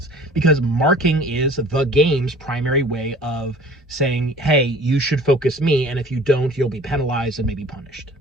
because marking is the game's primary way of saying, hey, you should focus me, and if you don't, you'll be penalized and maybe punished.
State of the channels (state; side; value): normal; both; correlation 0.47